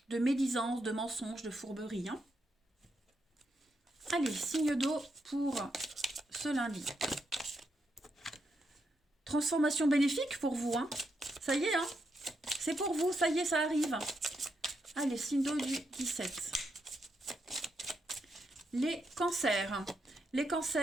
de médisance, de mensonges, de fourberie. Hein. Allez, signe d'eau pour ce lundi. Transformation bénéfique pour vous. Hein. Ça y est, hein. C'est pour vous, ça y est, ça arrive. Allez, signe d'eau du 17. Les cancers. Les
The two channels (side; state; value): both; normal; correlation 0.81